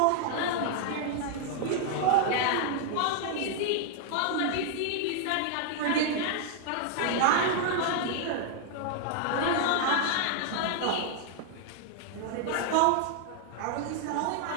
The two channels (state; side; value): different; both; correlation 0.00